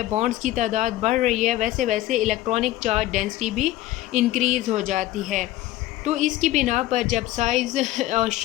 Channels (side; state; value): right; quieter; 15.4 dB